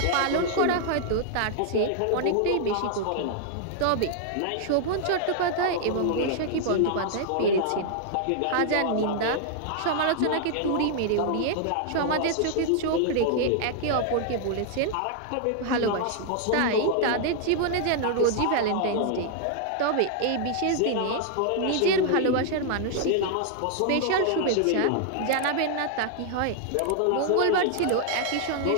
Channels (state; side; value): different; both; correlation -0.01